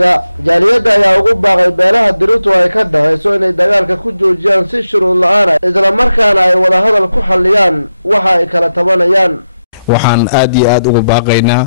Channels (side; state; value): both; inverted; correlation -0.87